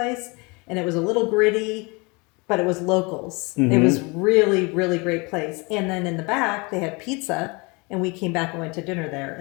and it was a little gritty, but it was locals. It was really, really great place. And then in the back, they had pizza, and we came back and went to dinner there.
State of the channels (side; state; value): right; quieter; 28.3 dB